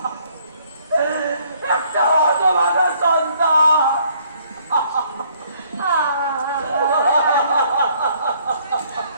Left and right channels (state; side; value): inverted; both; correlation -0.64